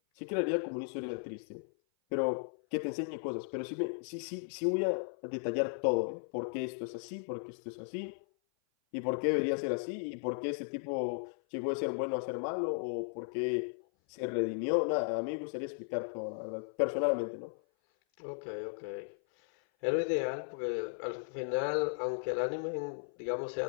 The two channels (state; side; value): silent; right; 54 dB below the other